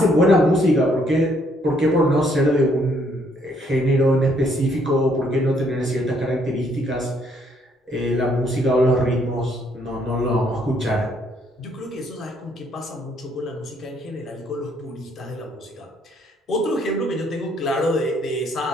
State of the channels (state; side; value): normal; both; correlation 0.68